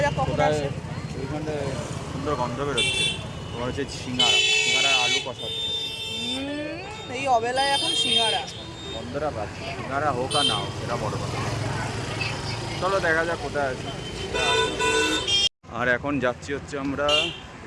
যাক কখন কোথায় আসে। ওইখানটায় সুন্দর গন্ধ বেরোচ্ছে, তোমার হচ্ছে সিঙ্গারা আলু কষাচ্ছে। এই অবেলায় এখন সিঙ্গারা গন্ধটা পাচ্ছি, সিঙ্গারা হোক আর না হোক সেটা বড় কথা। চলো দেখা যাক কোথায় আছে। আর এখন যাচ্ছি হচ্ছে আমরা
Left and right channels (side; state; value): both; identical; correlation 1.00